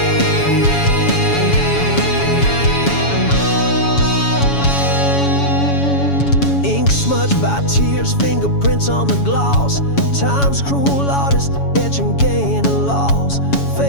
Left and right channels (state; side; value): late; right; 7.1 ms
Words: lost. Time's cruel artist, etching gain and loss.